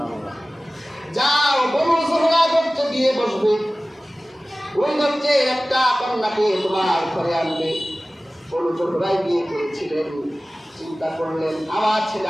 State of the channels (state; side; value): normal; both; correlation 0.97